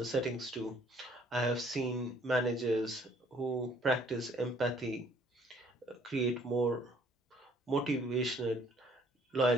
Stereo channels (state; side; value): normal; both; correlation 0.60